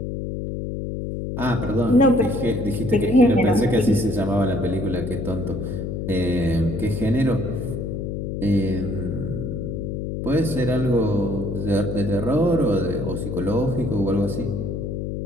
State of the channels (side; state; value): left; noise; hum, 4 dB below the sound